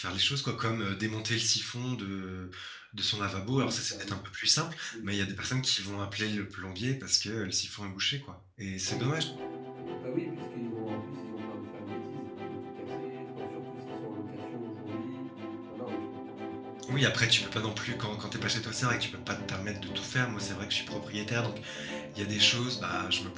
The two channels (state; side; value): identical; both; correlation 1.00